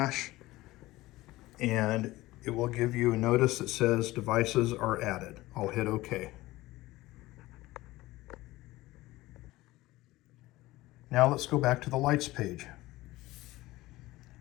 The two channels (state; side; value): quieter; right; 18.4 dB